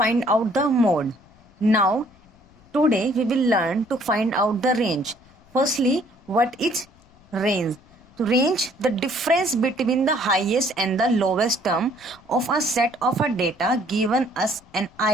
out the mode. Now today we will learn to find out the range. Firstly, what is range? To range, the difference between the highest and the lowest term of a set of a data given us an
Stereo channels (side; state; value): left; noise; rumble, 29 dB below the sound